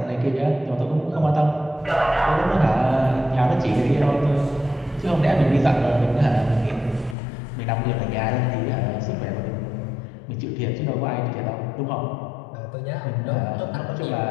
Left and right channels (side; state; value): right; drops out; at 7.2 s